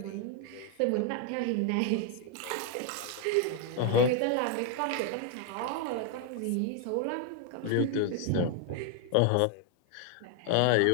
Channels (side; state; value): both; different; correlation 0.00